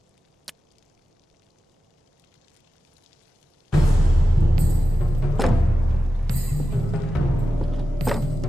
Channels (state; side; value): normal; both; correlation 0.93